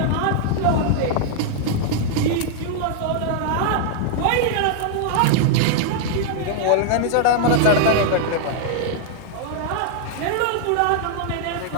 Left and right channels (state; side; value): different; both; correlation -0.01